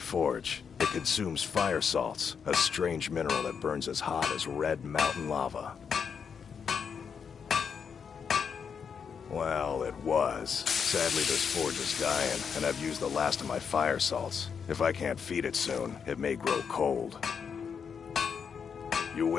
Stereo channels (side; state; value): right; quieter; 6.7 dB